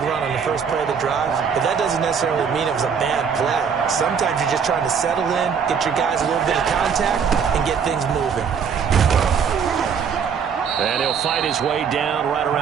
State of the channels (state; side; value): quieter; left; 6.7 dB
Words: run on the first play of the drive, but that doesn't necessarily mean it was a bad play. Sometimes you're just trying to settle in, get your guys a little bit of contact, and get things moving. And he'll fight his way down right